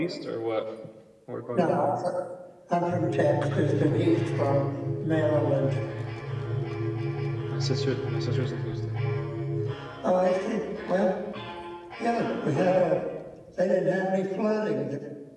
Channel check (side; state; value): both; identical; correlation 1.00